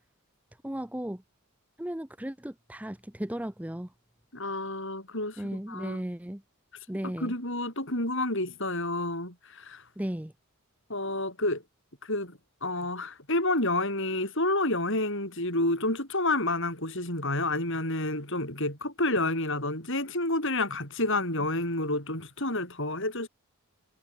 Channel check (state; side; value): normal; both; correlation 0.05